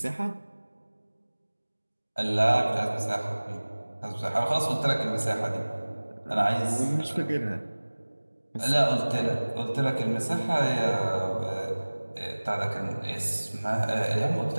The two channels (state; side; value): inverted; both; correlation -1.00